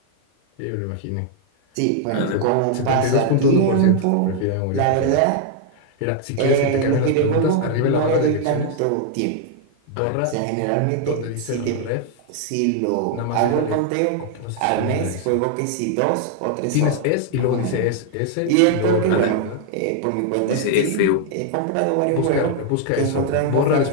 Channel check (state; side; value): different; both; correlation 0.00